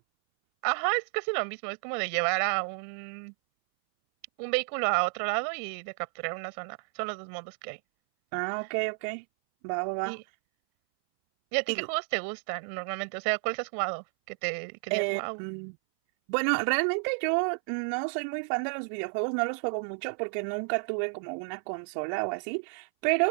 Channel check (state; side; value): silent; left; 57 dB below the other